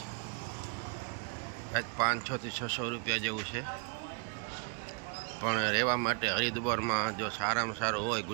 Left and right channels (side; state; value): left; quieter; 37.6 dB